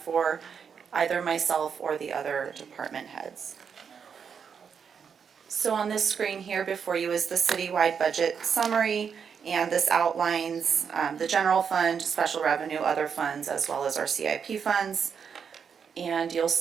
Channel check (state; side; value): quieter; left; 6.8 dB